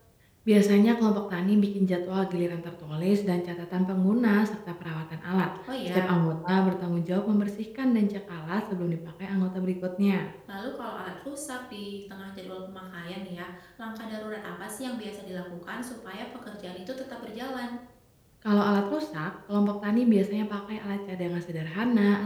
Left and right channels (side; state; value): both; identical; correlation 1.00